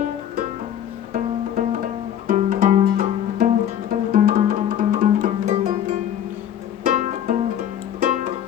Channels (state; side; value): quieter; right; 10.1 dB